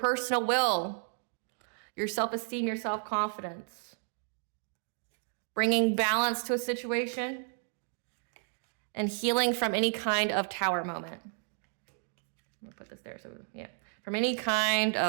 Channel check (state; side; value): silent; left; 56 dB below the other